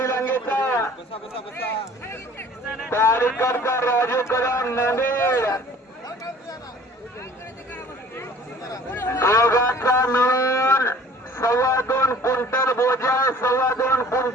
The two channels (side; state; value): both; normal; correlation 0.50